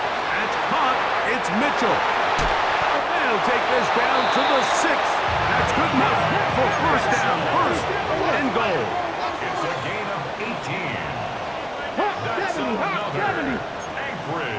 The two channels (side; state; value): both; identical; correlation 1.00